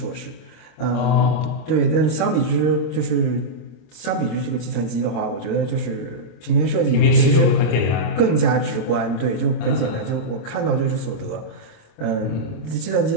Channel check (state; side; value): late; right; 25 ms